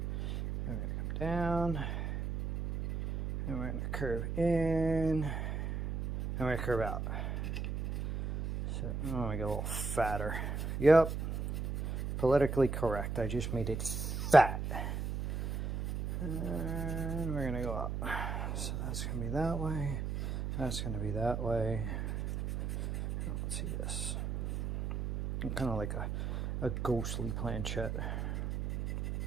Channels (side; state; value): right; noise; hum, 3 dB below the sound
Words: We're going to come down, and we're going to curve in, and we're going to curve out. So I'm going to make it a little fatter. Yep. Politically correct. I just made it fat. And we're going to go up. So that's going to be that way. That's going to be that way. Let's see this. Kind of like a ghostly planchette.